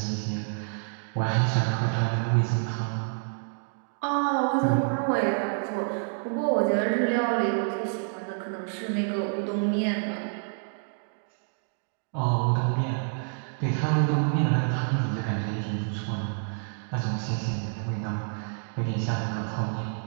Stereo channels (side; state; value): left; silent; 57 dB below the other